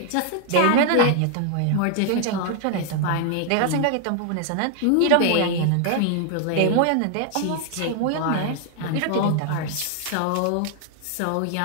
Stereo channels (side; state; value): both; different; correlation 0.00